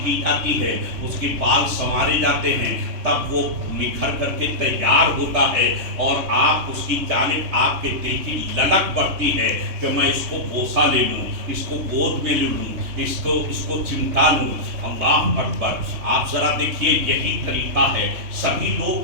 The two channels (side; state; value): left; late; 3.2 ms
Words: کی جاتی ہے، اس کے بال سنوارے جاتے ہیں. تب وہ نکھر کر کے تیار ہوتا ہے اور آپ اس کی جانب آپ کے دل کی للک بڑھتی ہے کہ میں اس کو بوسہ لے لوں، اس کو گود میں لے لوں، اس کو چمٹا لوں. اللہ اکبر. آپ ذرا دیکھیے یہی طریقہ ہے. سبھی